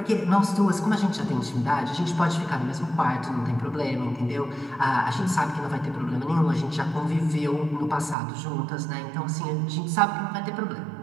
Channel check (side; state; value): left; drops out; at 8.2 s